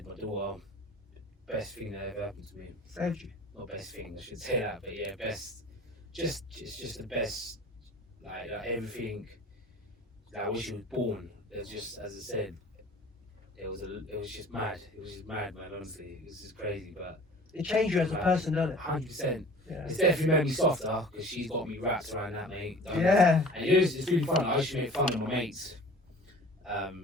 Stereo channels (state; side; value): normal; both; correlation 0.44